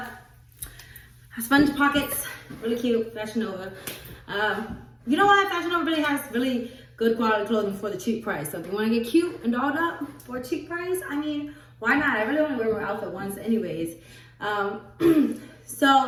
sponge pockets, really cute, Fashion Nova. You know what? Fashion Nova really has really good quality clothing for the cheap price. So if you want to get cute and dolled up for a cheap price, I mean, why not? I really only wear my outfit once anyways.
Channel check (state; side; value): identical; both; correlation 1.00